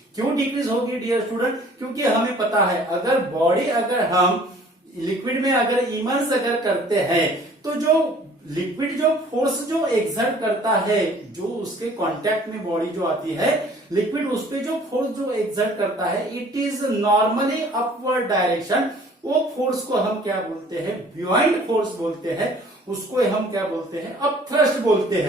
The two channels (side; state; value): both; normal; correlation 0.53